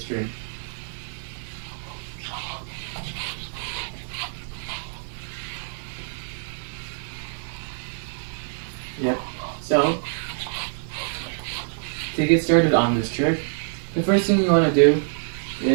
string. Yep. So, to get started on this trick, the first thing you want to do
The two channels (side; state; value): left; silent; digital silence